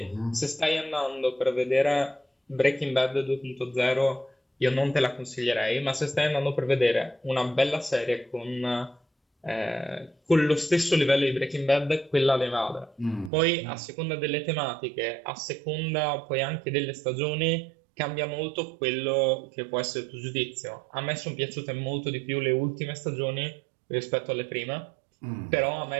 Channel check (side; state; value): left; drops out; at 13.3 s